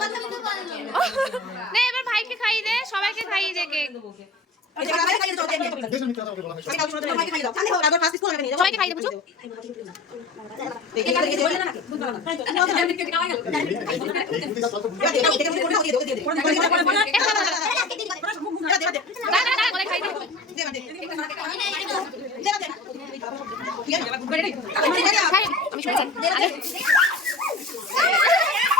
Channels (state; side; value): quieter; right; 3.2 dB